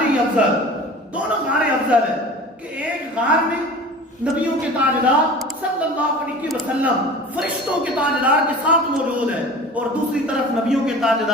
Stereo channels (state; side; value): normal; both; correlation 0.39